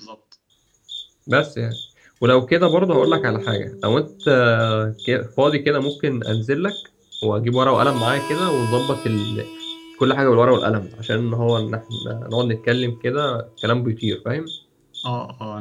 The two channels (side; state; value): both; identical; correlation 1.00